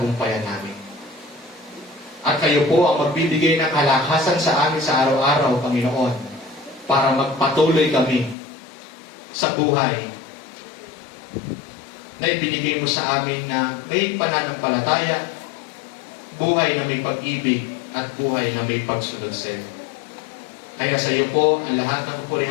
namin. At kayo po ang magbibigay ng kalakasan sa amin sa araw-araw, Panginoon, para magpatuloy kami sa buhay na ibinigay mo sa amin na may pananampalataya, buhay na may pag-ibig, at buhay na may pagsunod sa iyo. Kaya sa iyo po ang lahat ng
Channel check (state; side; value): drops out; right; at 8.3 s